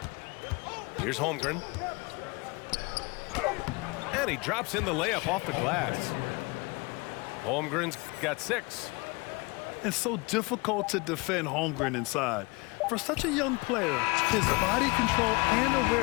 Here's Holmgren. And he drops in the layup off the glass. Holmgren's got 6. It's so difficult to defend Holmgren inside. For such a young player, his body control and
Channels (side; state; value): right; quieter; 26.6 dB